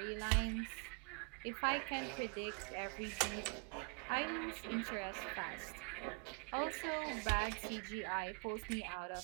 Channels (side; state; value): left; quieter; 35.4 dB